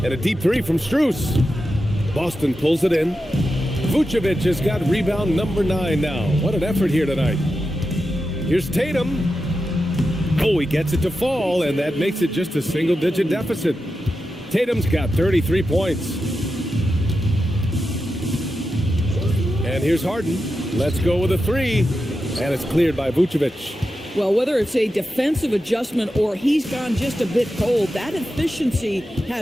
And a deep 3 from Strus. Boston pulls it in. Vucevic has got rebound number 9 now. What an effort here tonight. Here's Tatum. Oh, he gets it to fall, and that makes it just a single-digit deficit. Tatum's got 33 points. And here's Harden. Let's go with a 3. And it's cleared by Vucevic. Well, whether it's a defensive adjustment or he's gone just a bit cold, that efficiency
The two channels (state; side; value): normal; both; correlation 0.90